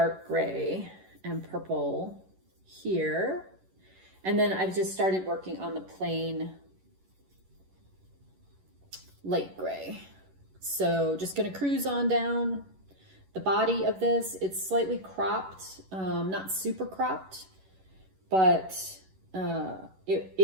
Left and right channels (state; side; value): late; left; 11 ms